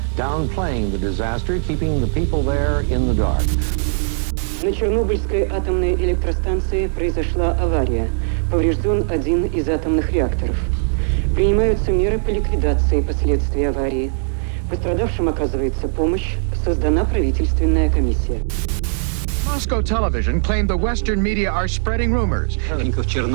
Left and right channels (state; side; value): silent; left; 66 dB below the other